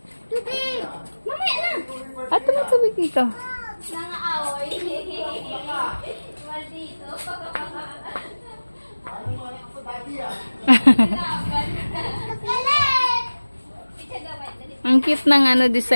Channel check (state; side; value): inverted; both; correlation -1.00